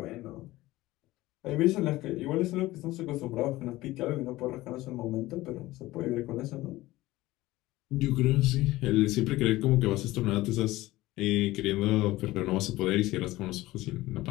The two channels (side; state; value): right; quieter; 17.9 dB